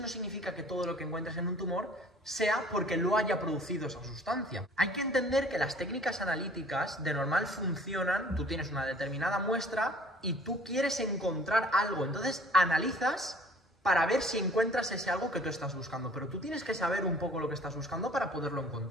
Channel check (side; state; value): both; normal; correlation 0.52